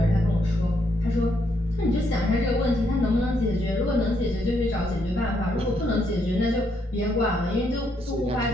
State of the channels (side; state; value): both; normal; correlation 0.75